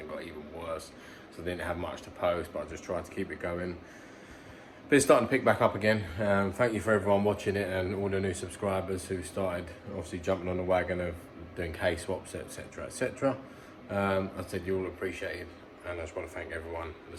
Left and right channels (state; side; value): identical; both; correlation 1.00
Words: got even worse. So I didn't have much to post, but I just tried to keep it going. But it's starting to pick back up again. Thank you for everyone watching it and all the new subscribers who started obviously jumping on the wagon of doing case swaps, etc, etc. I said you all appreciate it, and I just want to thank everyone at the